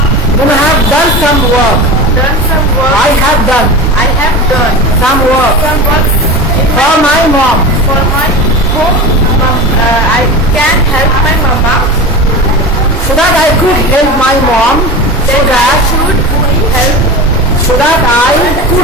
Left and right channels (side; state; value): both; normal; correlation 0.29